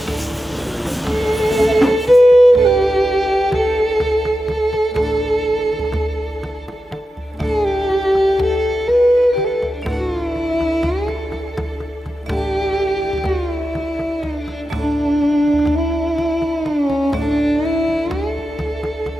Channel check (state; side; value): normal; both; correlation 0.90